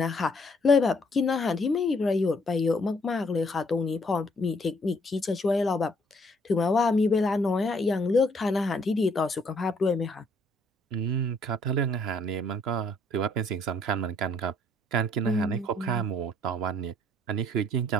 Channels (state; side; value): normal; both; correlation 0.65